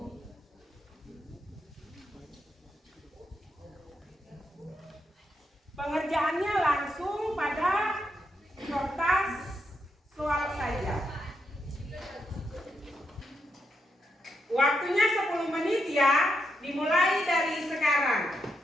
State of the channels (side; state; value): both; normal; correlation 0.82